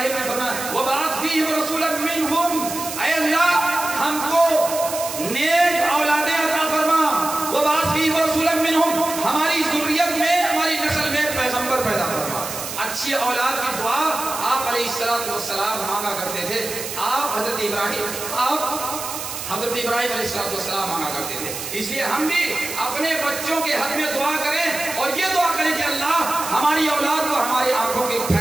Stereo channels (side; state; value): right; noise; hiss, 7 dB below the sound